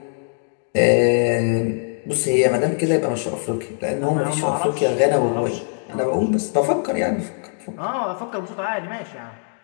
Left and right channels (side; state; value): right; silent; digital silence